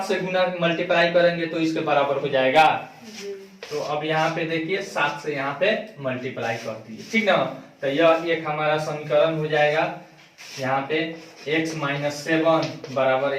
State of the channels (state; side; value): identical; both; correlation 1.00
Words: से गुना मल्टीप्लाई करेंगे तो इसके बराबर हो जाएगा। तो अब यहाँ पे देखिए 7 से यहाँ पे मल्टीप्लाई कर दिए, ठीक ना। तो यह एक हमारा समीकरण हो जाएगा, यहाँ पे x माइनस 7 बराबर